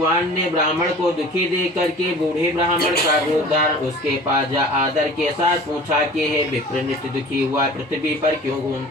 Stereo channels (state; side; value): normal; both; correlation 0.43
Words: ने ब्राह्मण को दुखी देख करके बूढ़े ब्राह्मण का रूप धारण उसके पास जा आदर के साथ पूछा कि हे विप्र, नित्य दुखी हुआ पृथ्वी पर क्यों